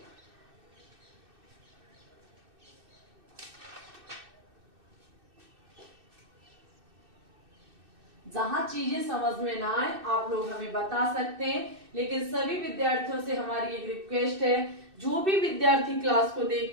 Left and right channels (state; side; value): late; left; 2.6 ms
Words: जहां चीजें समझ में ना आए आप लोग हमें बता सकते हैं, लेकिन सभी विद्यार्थियों से हमारी एक रिक्वेस्ट है, जो भी विद्यार्थी क्लास को